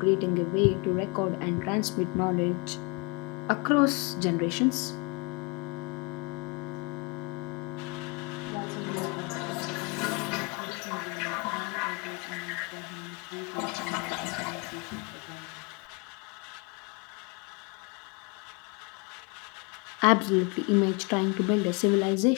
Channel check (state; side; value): quieter; right; 31.0 dB